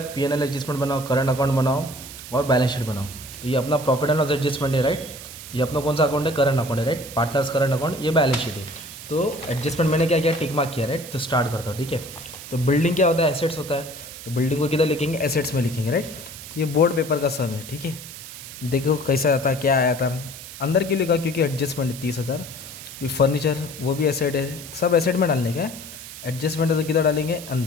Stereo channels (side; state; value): right; noise; hiss, 13 dB below the sound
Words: P&L एडजस्टमेंट बनाओ, करंट अकाउंट बनाओ और बैलेंस शीट बनाओ। तो ये अपना प्रॉफिट एंड लॉस एडजस्टमेंट है। राइट, ये अपना कौन सा अकाउंट है, करंट अकाउंट है। राइट, पार्टनर्स करंट अकाउंट, ये बैलेंस शीट है। तो एडजस्टमेंट मैंने क्या किया, टिक मार्क किया। राइट, तो स्टार्ट करता हूँ, ठीक है। तो बिल्डिंग क्या होता है, एसेट्स होता है। तो बिल्डिंग को किधर लिखेंगे, एसेट्स में लिखेंगे। राइट, तो ये बोर्ड पेपर का सम है, ठीक है। देखो कैसा आता, क्या आया था। अंदर क्यों लिखा, क्योंकि एडजस्टमेंट है 30,000। ये फर्नीचर वो भी एसेट है, सब एसेट में डालने का है। एडजस्टमेंट है तो किधर डालेंगे,